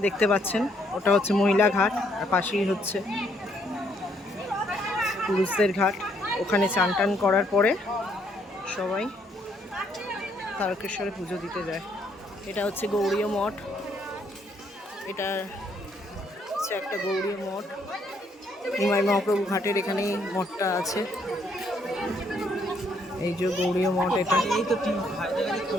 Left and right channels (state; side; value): normal; both; correlation 0.70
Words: দেখতে পাচ্ছেন ওটা হচ্ছে মহিলা ঘাট, আর পাশেই হচ্ছে পুরুষদের ঘাট। ওখানে চান টান করার পরে সবাই তারকেশ্বরে পুজো দিতে যায়। এটা হচ্ছে গৌড়ীয় মঠ। এটা হচ্ছে একটা গৌড়ীয় মঠ। নিমাই মহাপ্রভু ঘাটের এখানেই মঠটা আছে। এই যে গৌড়ীয় মঠ। এটা